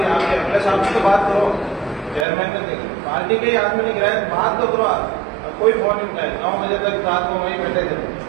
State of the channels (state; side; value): drops out; left; at 2.2 s